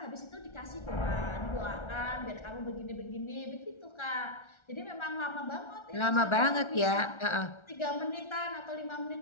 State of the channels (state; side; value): late; right; 1.3 ms